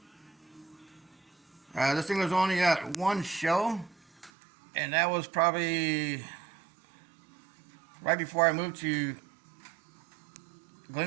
This thing was only at one show, and that was probably right before I moved to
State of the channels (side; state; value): left; drops out; at 4.3 s